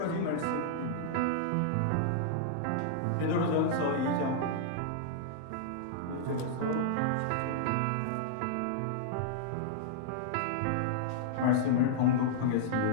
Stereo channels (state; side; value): different; both; correlation -0.01